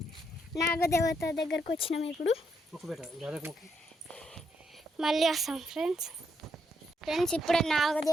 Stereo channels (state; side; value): normal; both; correlation 0.77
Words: నాగదేవత దగ్గరకు వచ్చినాం. ఇప్పుడు మళ్ళీ వస్తాం ఫ్రెండ్స్. ఇప్పుడే